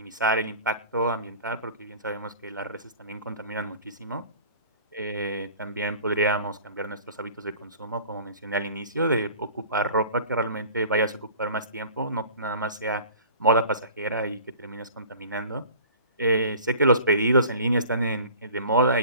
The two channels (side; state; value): both; inverted; correlation -0.45